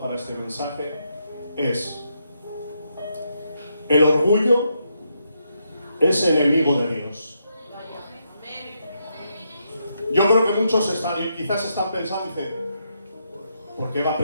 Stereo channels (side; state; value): both; inverted; correlation -0.80